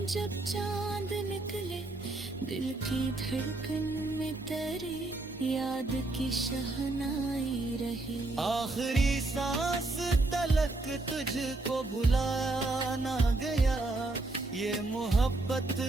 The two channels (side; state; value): left; quieter; 3.0 dB